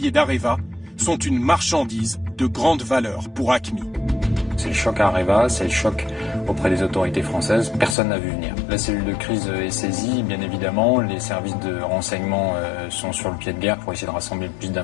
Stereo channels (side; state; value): right; drops out; at 8.0 s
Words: d'Areva, sont une marchandise de grande valeur pour AQMI. C'est le choc à Areva, c'est le choc auprès des autorités françaises. Personne n'a vu venir. La cellule de crise est saisie, bien évidemment. Les services de renseignement sont sur le pied de guerre pour essayer de rassembler plus